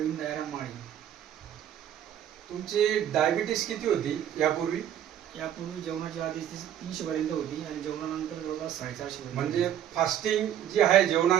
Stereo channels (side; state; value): left; quieter; 10.5 dB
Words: दयाराम माळी. तुमची डायबिटीस किती होती यापूर्वी? यापूर्वी जेवणाच्या आधी 300 पर्यंत होती आणि जेवणानंतर जवळपास 450 म्हणजे फास्टिंग जी आहे